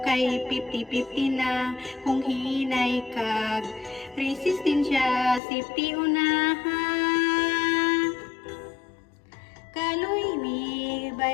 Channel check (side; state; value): right; drops out; at 5.4 s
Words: kay 50-50 na. Kung hinay kag resistensya, safety unahan. Kaloy mi